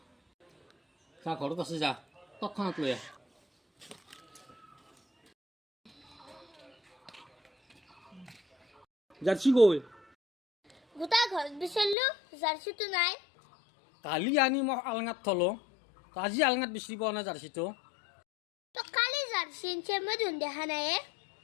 যা ঘৰত আছে যা তৎক্ষণাত লৈ আহ জাৰ্সি গৈ গোটা ঘৰত বিচাৰিলো জাৰ্চিটো নাই কালি আনি মই আলঙাত থলো আজি আলঙাত বিচাৰি পোৱা নাই জাৰ্চিটো তো কালি জাৰ্চি আনিছে মই দেখোন দেখা নাই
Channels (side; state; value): right; drops out; at 12.0 s